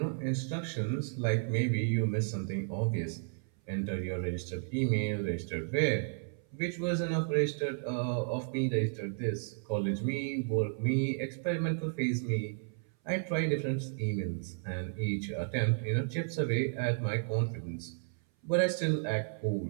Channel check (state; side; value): silent; left; 56 dB below the other